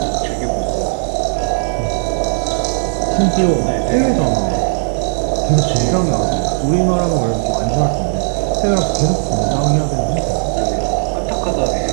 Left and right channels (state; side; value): silent; left; digital silence